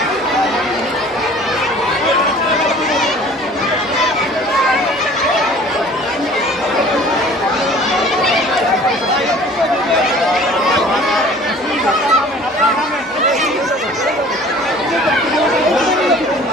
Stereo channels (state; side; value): normal; both; correlation 0.48